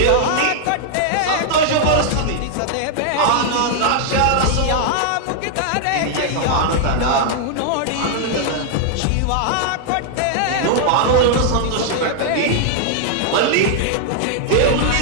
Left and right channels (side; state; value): both; different; correlation -0.01